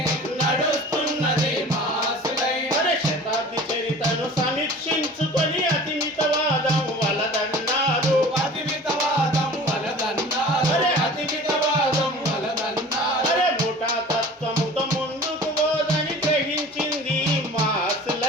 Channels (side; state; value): both; normal; correlation 0.42